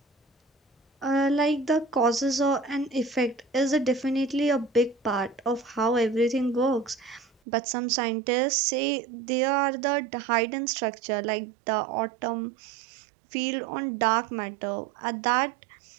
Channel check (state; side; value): drops out; left; at 7.2 s